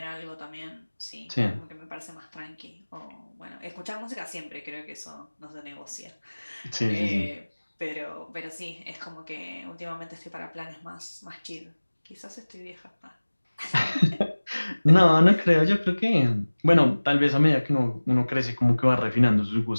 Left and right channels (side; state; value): both; inverted; correlation -1.00